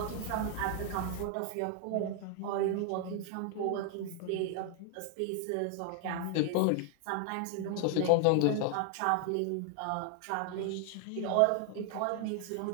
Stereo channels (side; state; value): both; different; correlation 0.00